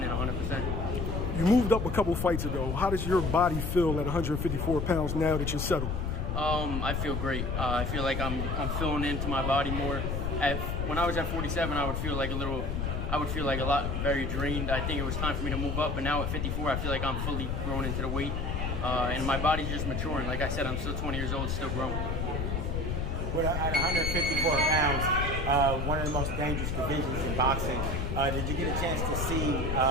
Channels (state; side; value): noise; left; rumble, 1 dB below the sound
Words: 100%. You moved up a couple fights ago. How does your body feel at 154 pounds now that you're settled? I feel great. I feel like I'm filling into my body more. When I was at 47, I would feel like a lot very drained. I think it was time for me to move up, but now at 54, I feel like I'm fully grown into the weight. And my body's just maturing. Like I said, I'm still 20 years old, still growing. Well, at 154 pounds, one of the most dangerous divisions in boxing, did you get a chance to see